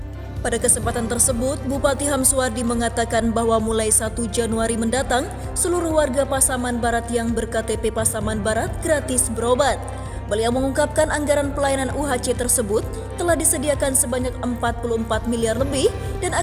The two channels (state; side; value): identical; both; correlation 1.00